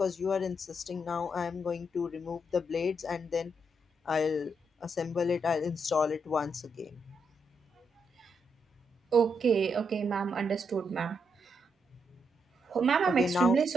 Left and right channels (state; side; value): normal; both; correlation 0.79